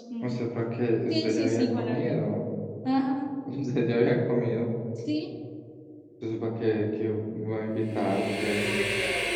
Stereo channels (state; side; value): identical; both; correlation 1.00